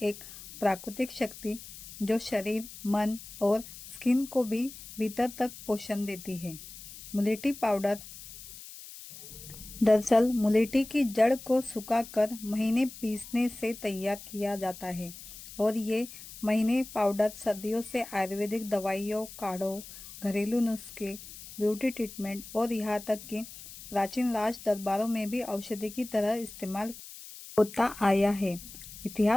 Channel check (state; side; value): noise; left; hiss, 15 dB below the sound